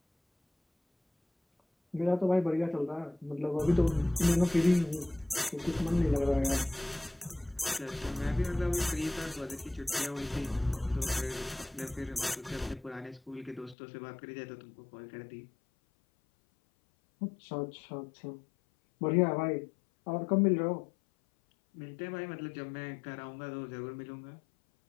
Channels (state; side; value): drops out; right; at 13.8 s